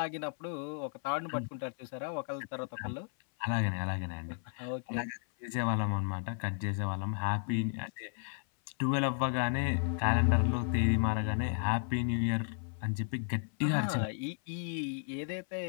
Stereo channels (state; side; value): silent; right; 55 dB below the other